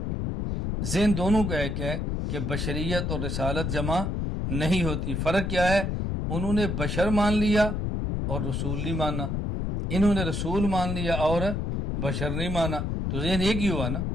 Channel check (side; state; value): left; noise; rumble, 1 dB below the sound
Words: ذہن دونوں کا ایک ہے کہ بشریت اور رسالت جمع نہیں ہوتی۔ فرق کیا ہے؟ انہوں نے بشر مان لیا اور رسول نہیں مانا، انہوں نے رسول مان لیا اور بشر نہیں مانا، تو ذہن ایک ہی ہوا نا۔